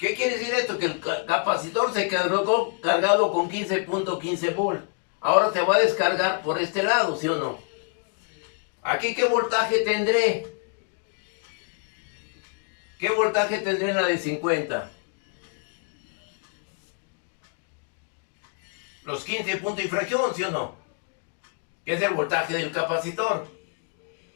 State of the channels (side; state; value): right; quieter; 39.5 dB